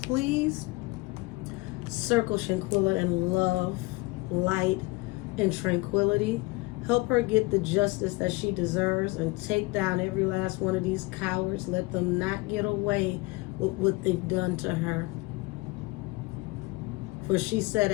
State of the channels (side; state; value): right; quieter; 23.5 dB